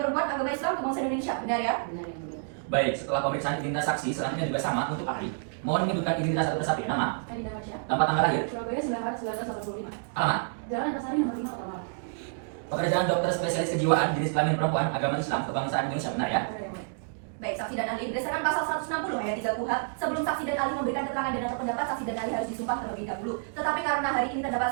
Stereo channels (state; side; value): silent; left; digital silence